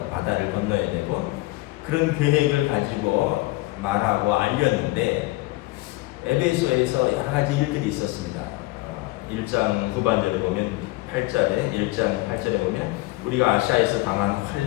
바다를 건너야 되고, 그런 계획을 가지고 말하고 알렸는데, 에베소에서 여러 가지 일들이 있었습니다. 1장 후반절에 보면 8절에 1장 8절에 보면 우리가 아시아에서 당한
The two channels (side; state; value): right; quieter; 20.4 dB